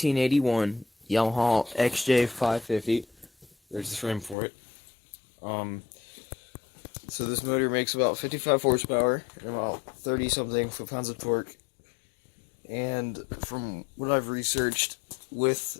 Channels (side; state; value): right; drops out; at 4.4 s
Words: Yamaha XJ550. There's the frame for it. So this motor makes about 55 horsepower and about 30 something foot-pounds of torque. And from what I've researched, with